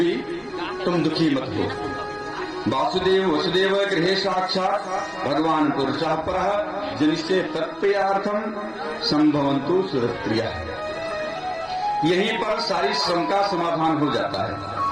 तुम दुखी मत हो। वासुदेव वसुदेव गृहे साक्षात भगवान पुरुषः परः जिनसे तत्प्रियार्थम संभवन्तु सुरप्रिया। यहीं पर सारी शंका समाधान हो जाता है।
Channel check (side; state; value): both; identical; correlation 1.00